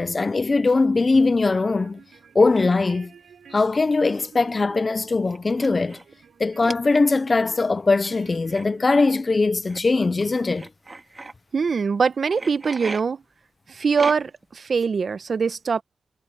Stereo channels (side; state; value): both; normal; correlation 0.93